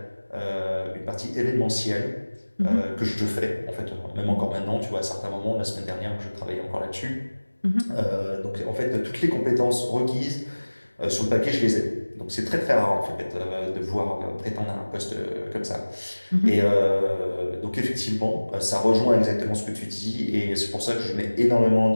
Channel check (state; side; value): inverted; both; correlation -1.00